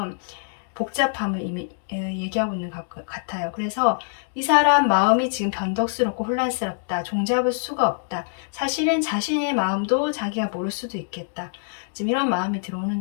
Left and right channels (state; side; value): silent; right; digital silence